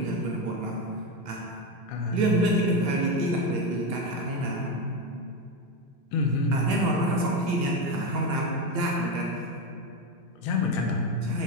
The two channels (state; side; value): late; left; 2.8 ms